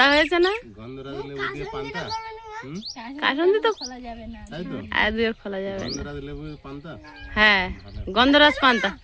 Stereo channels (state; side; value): identical; both; correlation 1.00